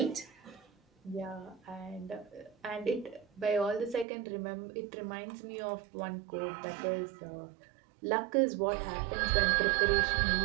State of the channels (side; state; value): left; drops out; at 4.0 s